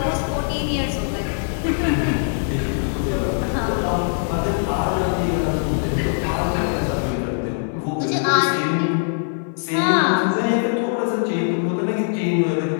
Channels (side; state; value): right; silent; 65 dB below the other